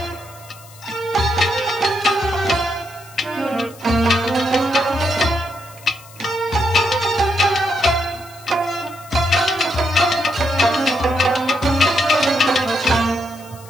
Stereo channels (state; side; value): noise; left; hiss, 22 dB below the sound